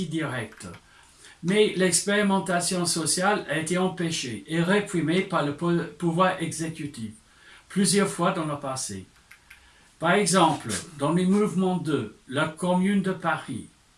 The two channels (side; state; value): both; identical; correlation 1.00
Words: directe. Mais l'expérimentation sociale a été empêchée et réprimée par le pouvoir exécutif, plusieurs fois dans le passé. Par exemple, dans les mouvements de la Commune de Paris,